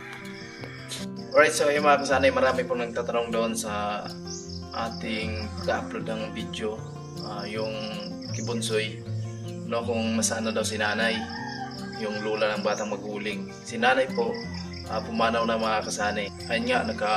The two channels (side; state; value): both; identical; correlation 1.00